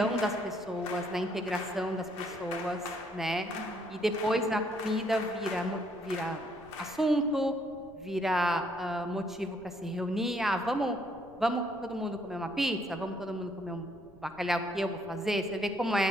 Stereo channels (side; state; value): left; noise; rumble, 24 dB below the sound